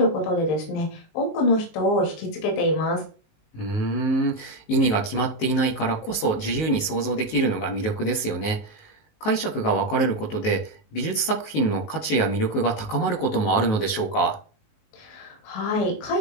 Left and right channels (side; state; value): right; late; 19 ms